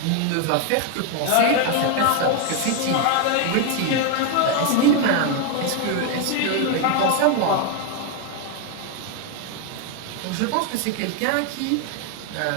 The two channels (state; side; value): different; both; correlation 0.01